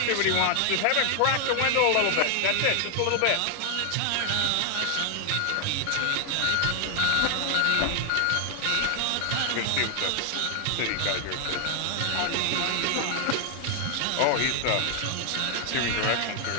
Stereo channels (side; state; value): both; different; correlation 0.00